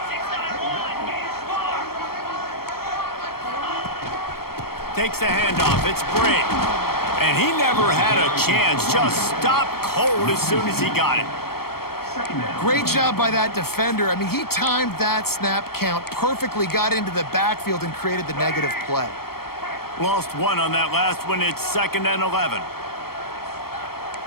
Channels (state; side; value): late; right; 0.94 ms